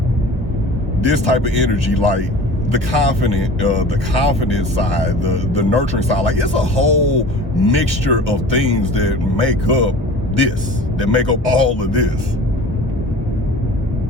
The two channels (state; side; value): normal; both; correlation 0.40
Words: this type of energy, like the confident side, the nurturing side, like it's a whole mixture of things that make up all of this.